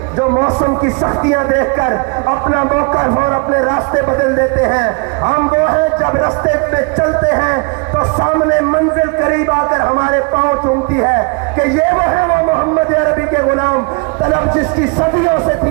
जो मौसम की सख्तियां देखकर अपना मौका और अपने रास्ते बदल देते हैं। हम वो हैं जब रास्ते पे चलते हैं तो सामने मंजिल करीब आकर हमारे पांव चूमती है कि ये वो है वो मोहम्मद अरबी के गुलाम, तलब जिसकी सदियों से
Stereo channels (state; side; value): quieter; left; 33.1 dB